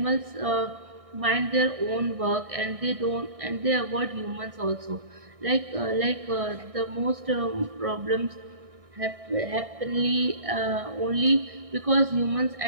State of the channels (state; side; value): late; left; 1.6 ms